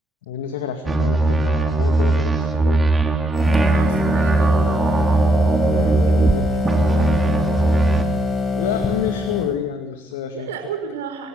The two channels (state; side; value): normal; both; correlation 0.75